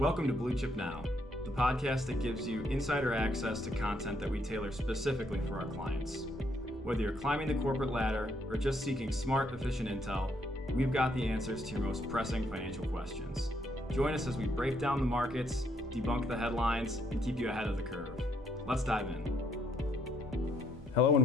to Blue Chip Now, the podcast that gives you insider access to content that we tailor specifically for our clients. Whether you're climbing the corporate ladder or just seeking smart, efficient intel, we've got the answers to your most pressing financial questions. Join us as we break down the markets, debunk the headlines, and keep you ahead of the curve. Let's dive in. Hello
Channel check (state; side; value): normal; both; correlation 0.72